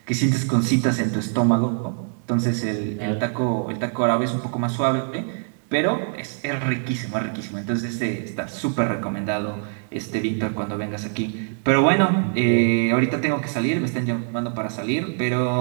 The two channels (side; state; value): left; silent; 63 dB below the other